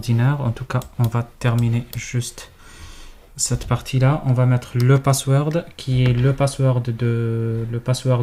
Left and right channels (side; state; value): both; identical; correlation 1.00